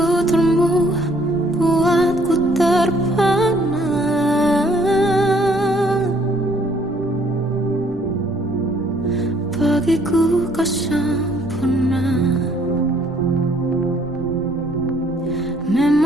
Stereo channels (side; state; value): both; normal; correlation 0.63